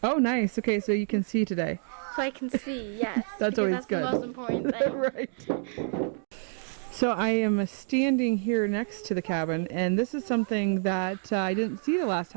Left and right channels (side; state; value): left; silent; digital silence